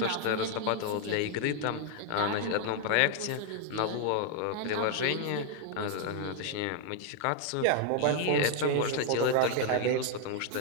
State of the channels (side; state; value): both; different; correlation 0.00